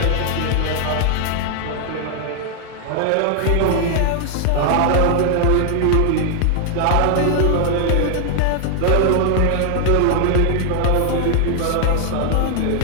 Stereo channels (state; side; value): different; both; correlation 0.00